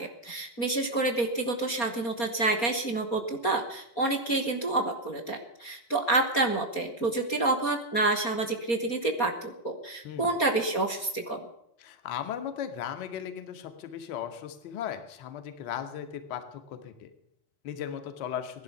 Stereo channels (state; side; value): late; right; 4.3 ms